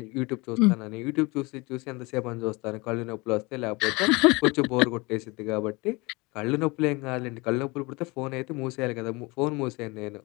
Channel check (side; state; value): right; quieter; 25.3 dB